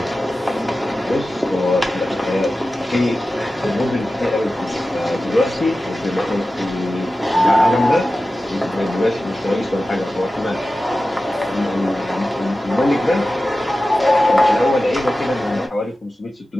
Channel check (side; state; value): both; normal; correlation 0.95